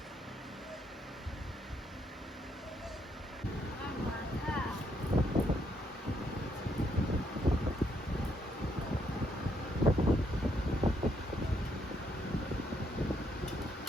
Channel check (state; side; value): normal; both; correlation 0.74